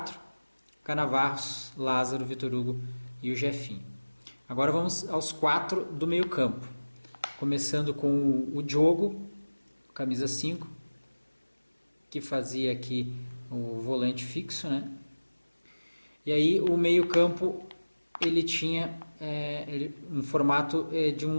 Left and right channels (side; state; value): both; inverted; correlation -1.00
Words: Canavarros, Lázaro, Vitor Hugo e o Jefinho. Agora vamos aos 4 do meio campo, começando com o Diogo, camisa 5, que fazia aqui o volante fixo, né? E aí o meio campo ele tinha um formato de um